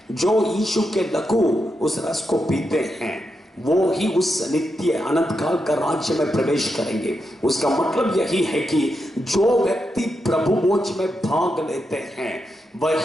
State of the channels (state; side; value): normal; both; correlation 0.85